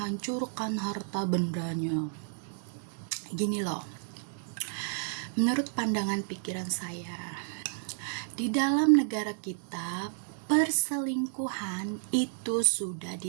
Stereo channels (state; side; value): silent; left; digital silence